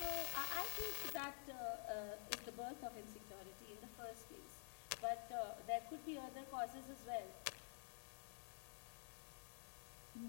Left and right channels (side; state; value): right; silent; digital silence